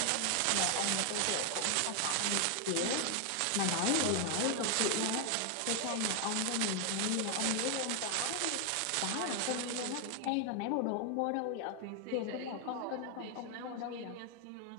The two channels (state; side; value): different; both; correlation 0.00